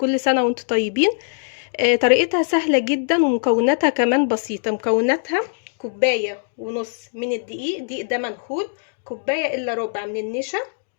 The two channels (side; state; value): right; silent; digital silence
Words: سنه وانتم طيبين. طريقتها سهله جدا ومكوناتها كمان بسيطه. مكوناتها كوبايه ونص من الدقيق ده منخول، كوبايه الا ربع من النشا،